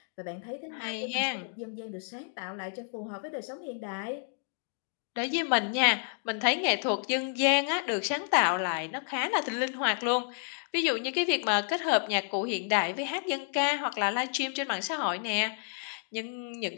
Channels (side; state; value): right; silent; 57 dB below the other